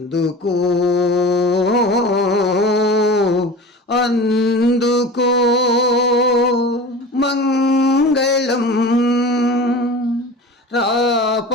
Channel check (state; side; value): normal; both; correlation 0.35